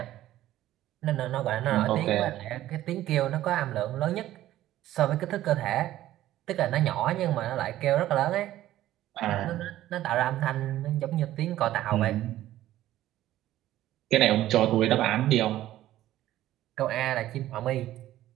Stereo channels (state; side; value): quieter; left; 14.0 dB